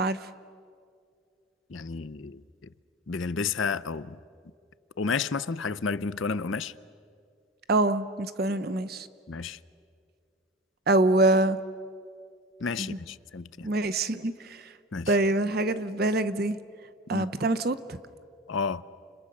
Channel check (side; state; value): both; normal; correlation 0.31